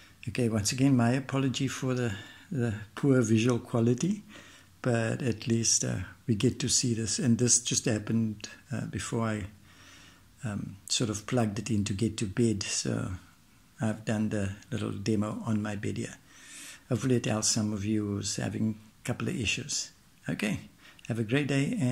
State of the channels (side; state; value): both; identical; correlation 1.00